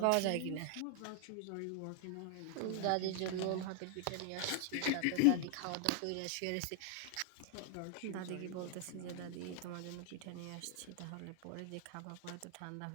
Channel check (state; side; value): different; both; correlation 0.00